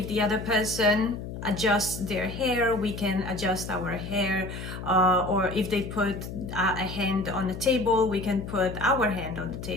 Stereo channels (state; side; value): noise; left; hum, 8 dB below the sound